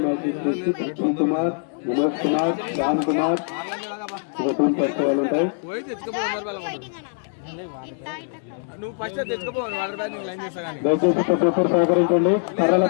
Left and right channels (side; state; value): right; silent; 63 dB below the other